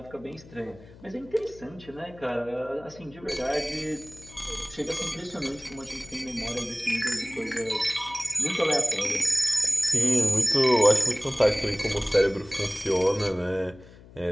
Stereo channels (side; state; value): left; noise; hum, 22 dB below the sound